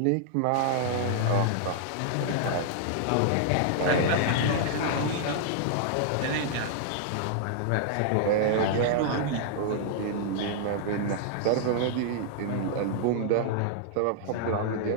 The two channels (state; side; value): different; both; correlation -0.01